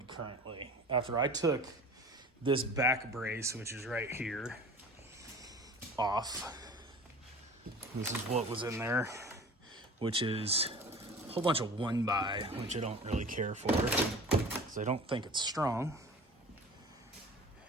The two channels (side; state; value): both; normal; correlation 0.41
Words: currently. After I took this back brace, which is right here, off. This is what was in there, which is a whole bunch of 1x, which I don't really care for because I don't think it's strong.